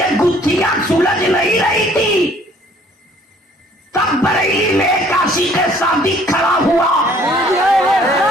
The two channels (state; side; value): normal; both; correlation 0.58